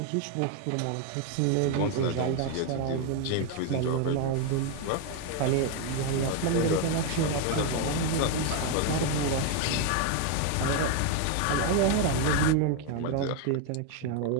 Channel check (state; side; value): different; both; correlation 0.01